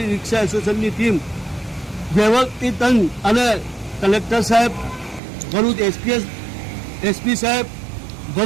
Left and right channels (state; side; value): drops out; left; at 5.2 s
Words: રિક્ષા એસોસિએશનની ટીમ વ્યવસ્થિત અને કલેક્ટર સાહેબ, ભરૂચ એસપી સાહેબ,